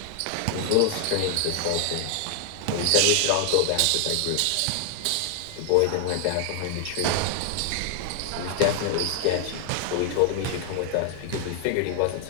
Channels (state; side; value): different; both; correlation 0.00